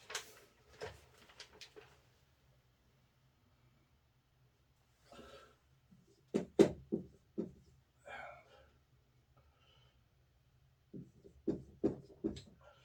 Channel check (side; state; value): both; identical; correlation 1.00